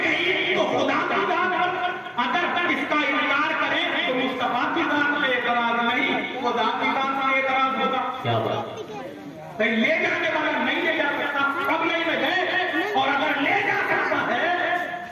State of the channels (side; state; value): both; identical; correlation 1.00